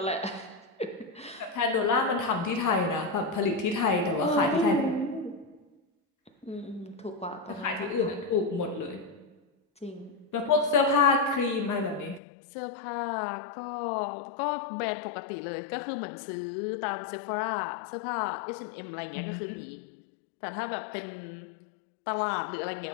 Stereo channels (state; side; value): drops out; right; at 12.2 s